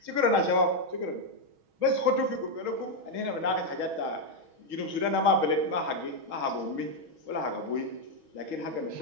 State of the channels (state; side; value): late; left; 6.3 ms